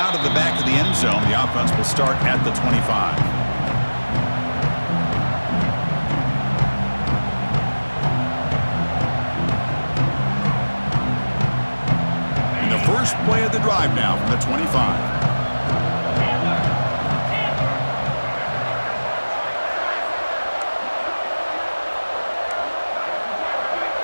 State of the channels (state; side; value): inverted; both; correlation -1.00